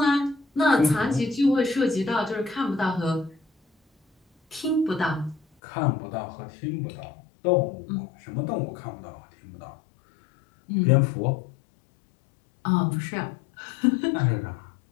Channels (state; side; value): drops out; right; at 5.4 s